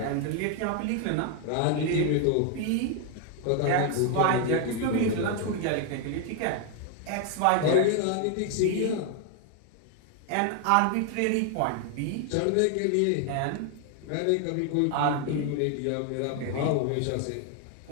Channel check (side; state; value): both; different; correlation 0.01